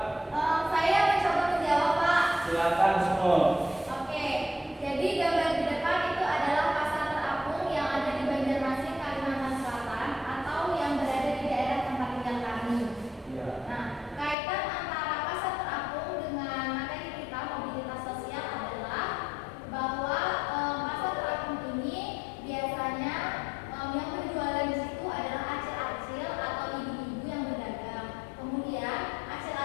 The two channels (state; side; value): drops out; right; at 14.4 s